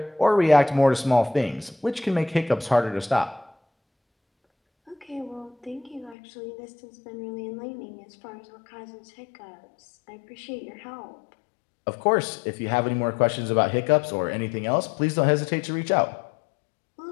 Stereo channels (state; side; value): drops out; right; at 6.2 s